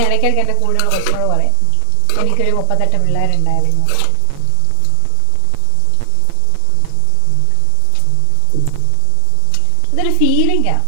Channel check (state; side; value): different; both; correlation 0.00